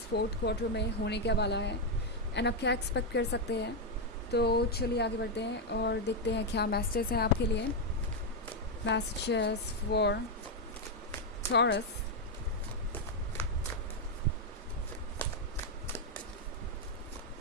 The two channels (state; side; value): normal; both; correlation 0.02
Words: फोर्थ क्वार्टर में होने क्या वाला है एंड आप क्या एक्सपेक्ट कर सकते हैं। तो चलिए आगे बढ़ते हैं और देखते हैं क्या मैसेजेस हैं आपके लिए। Messages for taurus.